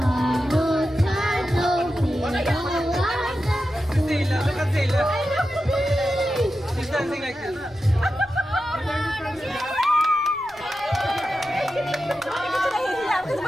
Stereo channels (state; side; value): noise; left; rumble, 27 dB below the sound